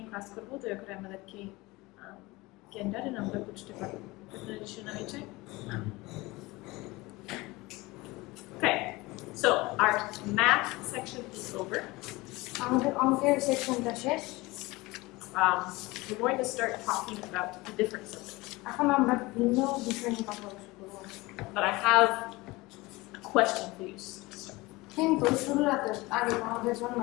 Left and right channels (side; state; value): right; quieter; 21.8 dB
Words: ক্লাস করবো, দয়া করে আমাদেরকে জ্ঞানটা আমরা বুঝতে পারবো। আপনাদের শোনা হয়েছে? Okay, so our math section is over. আমাদের অঙ্কের সেকশনটা শেষ। We're going to start talking about the different subjects. এখন আমরা ভিন্ন বিষয় নিয়ে কথা বলবো। But I have a question for you. কিন্তু শুরুর আগে আমাদের জন্য